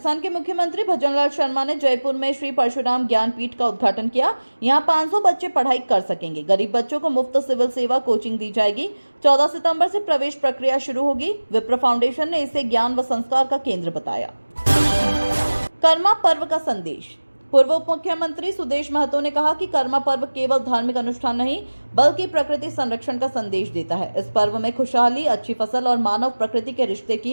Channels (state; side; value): inverted; both; correlation -1.00